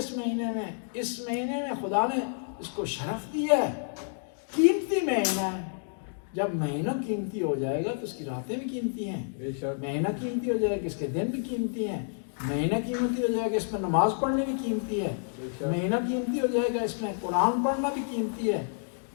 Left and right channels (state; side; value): silent; right; digital silence